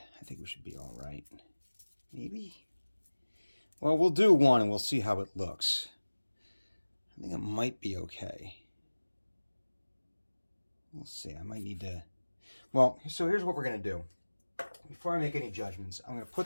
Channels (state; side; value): inverted; both; correlation -1.00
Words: I think we should be all right. Maybe? Well, we'll do one and we'll see how it looks. I think it might be okay. We'll see. I might need to... Well, so here's what we're going to do. Before I make any judgments, I'm going to